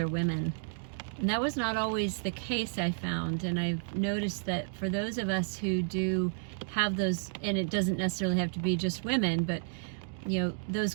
women. And that was not always the case, I found. And I've noticed that for those of us who do have those, and it doesn't necessarily have to be just women, but those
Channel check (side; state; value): left; silent; digital silence